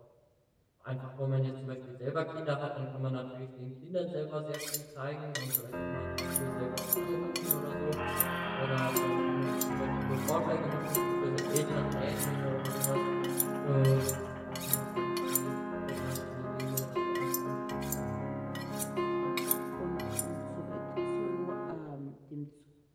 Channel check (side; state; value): both; identical; correlation 1.00